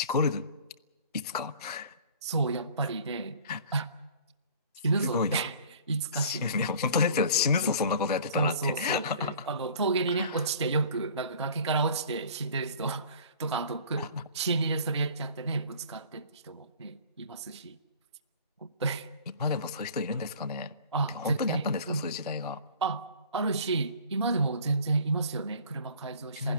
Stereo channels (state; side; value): inverted; both; correlation -0.46